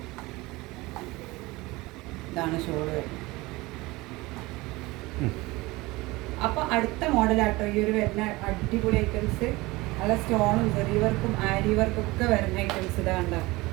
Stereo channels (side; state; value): left; quieter; 21.5 dB